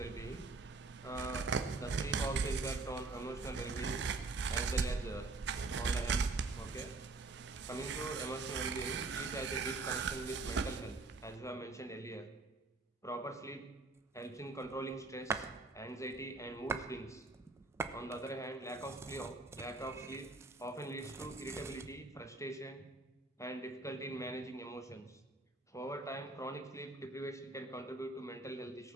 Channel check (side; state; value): left; quieter; 3.5 dB